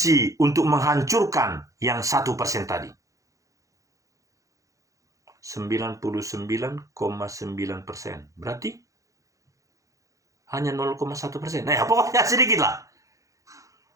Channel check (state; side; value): late; left; 0.16 ms